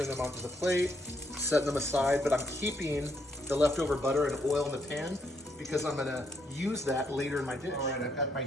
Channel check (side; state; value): both; normal; correlation 0.74